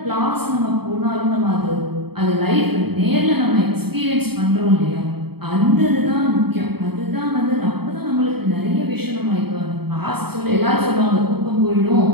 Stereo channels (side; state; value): left; late; 0.96 ms